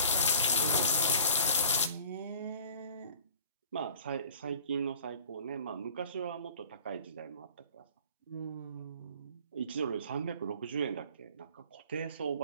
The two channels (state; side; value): inverted; both; correlation -0.47